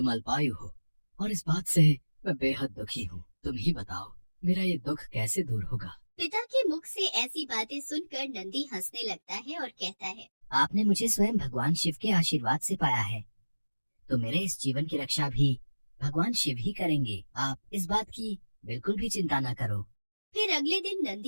अल्पायु हो और इस बात से मैं बेहद दुखी हूँ। तुम ही बताओ, मेरा ये दुख कैसे दूर होगा? पिता के मुख से ऐसी बातें सुनकर नंदी हंसने लगता है और कहता है, आपने मुझे स्वयं भगवान शिव के आशीर्वाद से पाया है, तो मेरे इस जीवन की रक्षा भी भगवान शिव ही करेंगे। आप इस बात की बिल्कुल भी चिंता न करो। फिर अगले दिन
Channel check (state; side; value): inverted; both; correlation -1.00